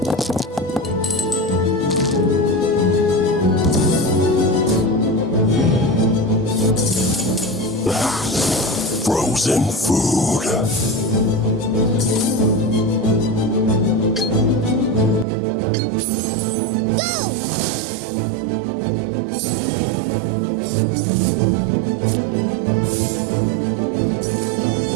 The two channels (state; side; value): drops out; left; at 15.2 s